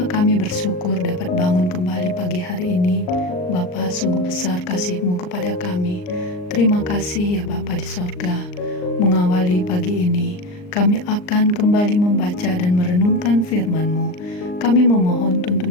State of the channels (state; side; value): late; right; 39 ms